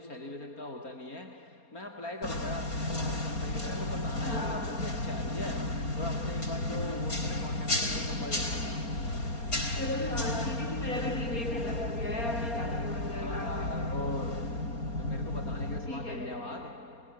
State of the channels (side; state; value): right; late; 4.3 ms